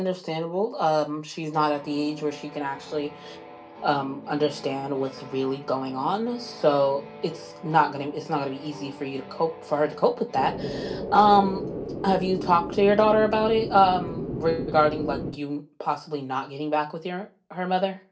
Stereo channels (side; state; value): both; identical; correlation 1.00